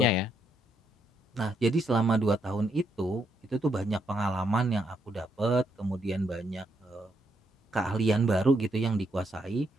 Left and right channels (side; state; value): both; normal; correlation 0.77